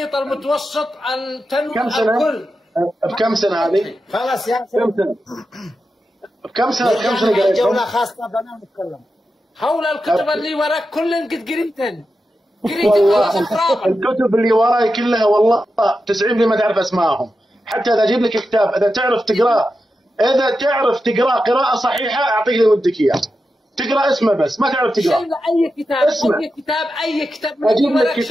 المتوسط التنوي الكل. بكم سنة هذه؟ خلاص يا بكم سنة قريتهم؟ جولة خاصة بنا نتكلم. حول الكتب اللي وراك كلن قد قريتن. والله الكتب اللي وراي كلها والله 90% ما تعرف اسمائهم. حتى اذا اجيب لك كتاب اذا تعرف تقراه قراءة صحيحة اعطيك اللي ودك اياه. تقرا اسمه بس ما تعرف تقرا. اي كتاب اي كتاب اجيب لك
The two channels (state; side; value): normal; both; correlation 0.89